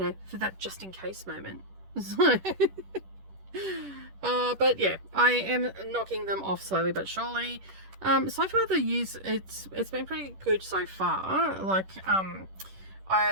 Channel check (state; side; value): late; left; 10 ms